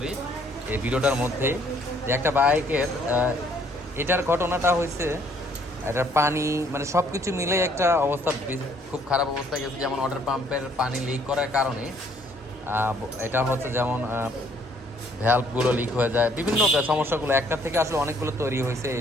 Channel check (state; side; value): normal; both; correlation 0.63